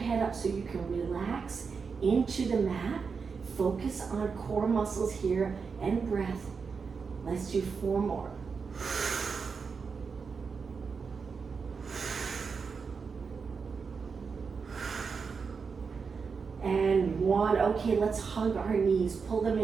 up so you can relax into the mat. Focus on core muscles here and breath. Let's do 4 more. And 1. Okay, let's hug our knees. Pull them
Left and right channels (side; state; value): left; quieter; 5.4 dB